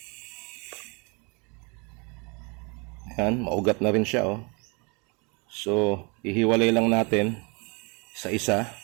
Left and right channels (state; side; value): quieter; left; 30.9 dB